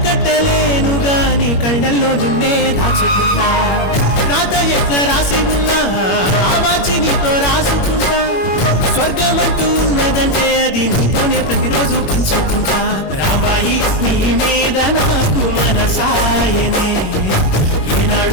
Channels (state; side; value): late; right; 21 ms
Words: కట్టలేను గాని కళ్ళల్లో నిన్నే దాచుకుంటా రాత ఎట్లా రాసి ఉన్నా ఆ మార్చి నీతో రాసుకుంటా స్వర్గమంటూ ఉన్నదంటే అది నీతోనే ప్రతిరోజు పంచుకుంటా రాంబాయి నీ మీద నాకు మనసాయనే